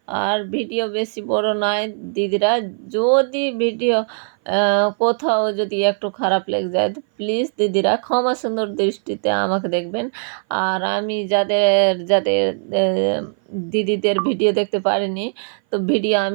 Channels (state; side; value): silent; left; 59 dB below the other